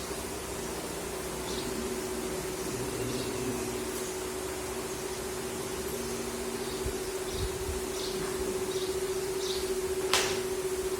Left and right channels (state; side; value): identical; both; correlation 1.00